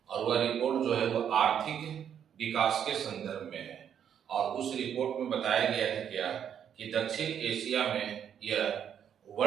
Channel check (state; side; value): quieter; left; 8.8 dB